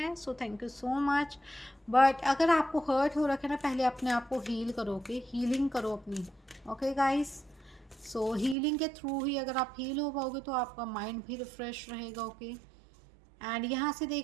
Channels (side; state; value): left; drops out; at 8.6 s